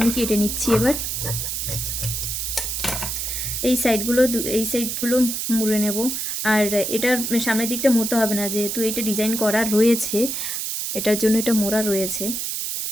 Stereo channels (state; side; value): noise; right; hiss, 3 dB below the sound